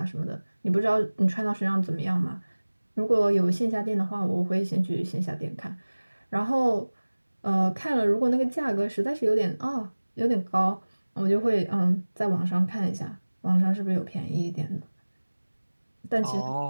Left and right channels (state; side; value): inverted; both; correlation -1.00